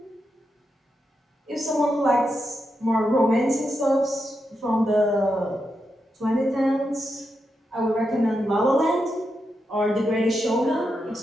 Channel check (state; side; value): normal; both; correlation 0.86